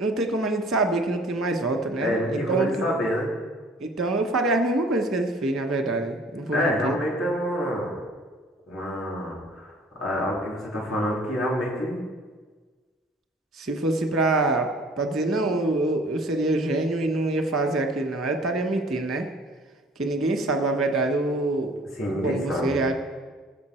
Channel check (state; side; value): normal; both; correlation 0.52